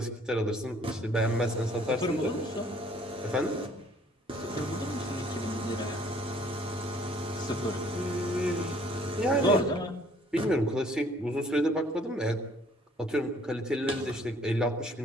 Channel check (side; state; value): both; normal; correlation 0.58